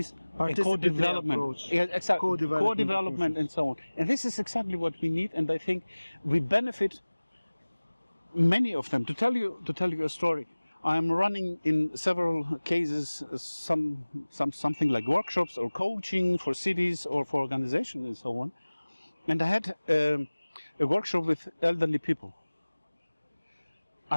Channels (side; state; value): both; inverted; correlation -1.00